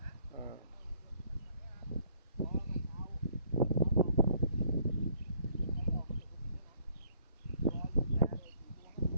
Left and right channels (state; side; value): inverted; both; correlation -0.64